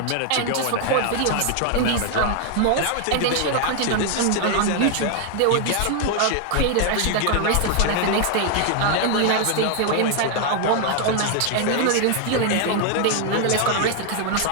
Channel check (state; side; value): different; both; correlation 0.00